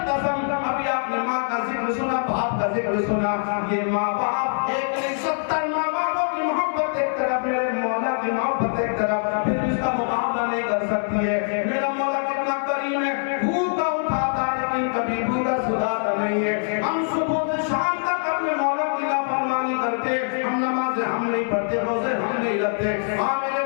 قسم۔ ابھی آپ نے ماں کا ذکر سنا، باپ کا ذکر سنا، یہ ماں باپ ایک نہیں 70 ماں باپوں کی محبت ایک طرف، میرے مولا کی محبت ایک طرف، پھر اس کا مقابلہ نہیں کر سکتی ہے۔ میرا مولا کتنا کریم ہے، بھوکا اٹھاتا ہے لیکن کبھی بھوکا سلاتا نہیں ہے۔ ہم صبح سے شام تک اپنے مولا کی نافرمانی کرتے، ہم نمازیں ہم نہیں پڑھتے، روزے ہم نہیں رکھتے۔ ہاں میرے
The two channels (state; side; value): silent; right; digital silence